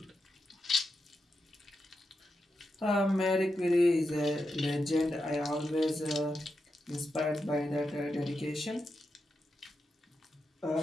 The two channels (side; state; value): both; normal; correlation 0.87